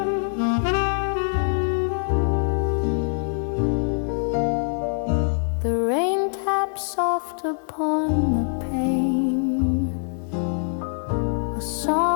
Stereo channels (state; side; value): silent; right; digital silence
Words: The rain taps soft upon the pane, a